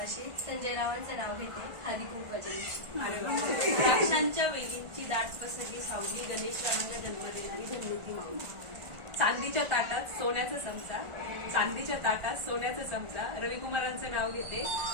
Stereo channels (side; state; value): left; late; 1.4 ms